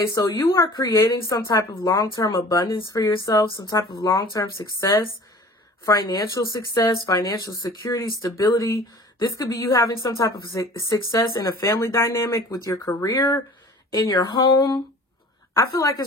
so you are creating some type of long-term abundance for yourself, some type of long-term success, financial security, stability. This could be you having some type of success in a family dynamic with your career, in your home. I feel like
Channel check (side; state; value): both; normal; correlation 0.45